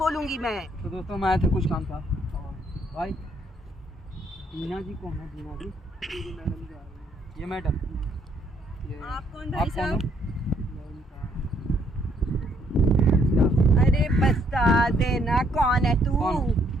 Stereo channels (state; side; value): normal; both; correlation 0.69